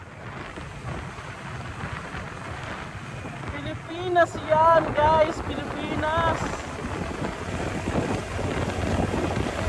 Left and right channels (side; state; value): both; identical; correlation 1.00